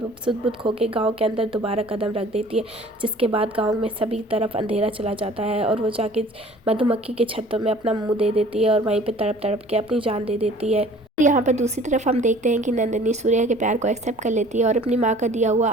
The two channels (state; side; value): normal; both; correlation 0.50